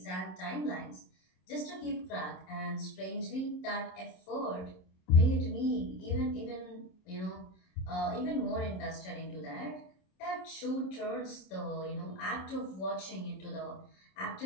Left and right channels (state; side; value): late; right; 27 ms